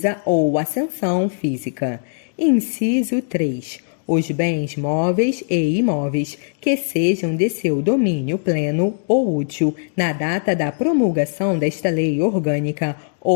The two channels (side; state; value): right; silent; digital silence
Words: ou ascensão física. Inciso 3. Os bens móveis e imóveis que sejam de seu domínio pleno ou útil na data da promulgação desta lei orgânica